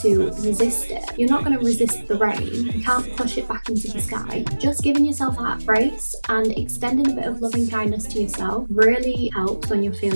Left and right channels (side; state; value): both; inverted; correlation -1.00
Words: to resist it. You're not going to resist the rain. You can't push it back into the sky. Just giving yourself that grace and extending a bit of loving kindness to yourself really helps when you're